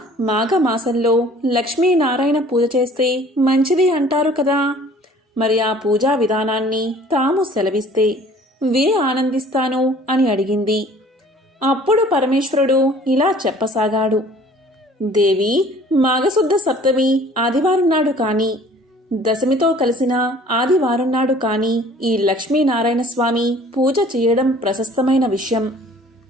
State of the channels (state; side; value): normal; both; correlation 0.51